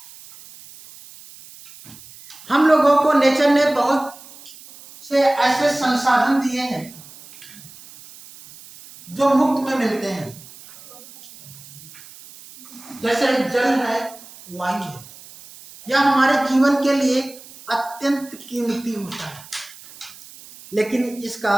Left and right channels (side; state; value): right; noise; hiss, 20 dB below the sound